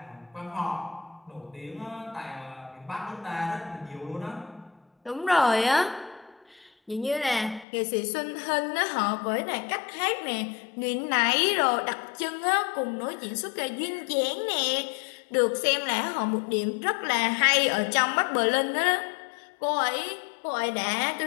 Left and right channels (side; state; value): right; drops out; at 7.7 s